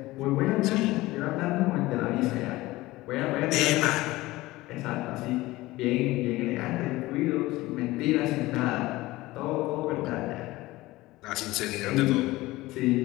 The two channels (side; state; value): right; quieter; 18.9 dB